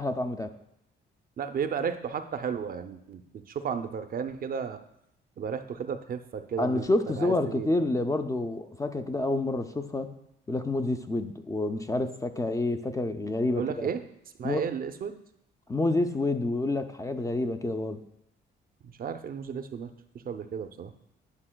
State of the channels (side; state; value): both; normal; correlation 0.69